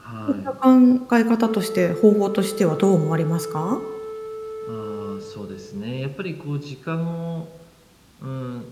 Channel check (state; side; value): identical; both; correlation 1.00